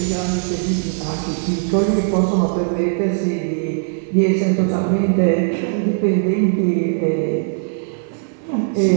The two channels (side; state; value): left; silent; digital silence